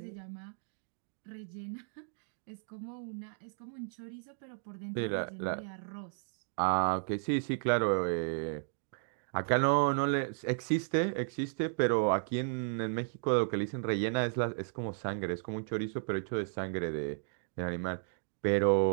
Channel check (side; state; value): left; silent; digital silence